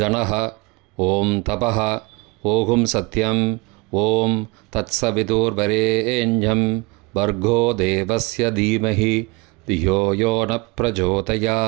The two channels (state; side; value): quieter; left; 26.6 dB